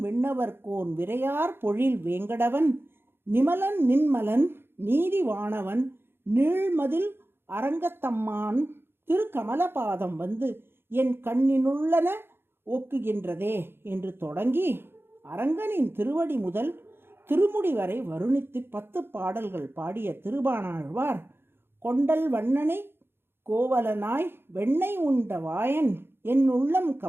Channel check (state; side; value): late; left; 0.11 ms